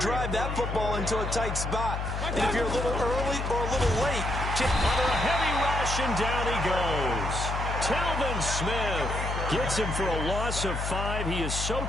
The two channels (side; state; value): left; noise; hum, 3 dB below the sound